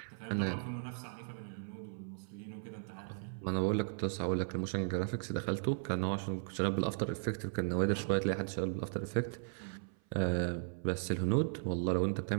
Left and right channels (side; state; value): left; silent; 53 dB below the other